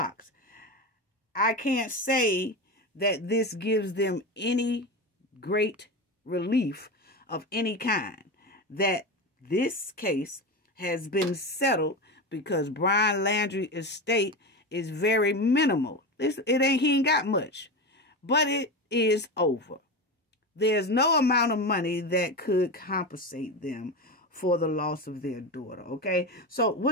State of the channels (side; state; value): both; normal; correlation 0.21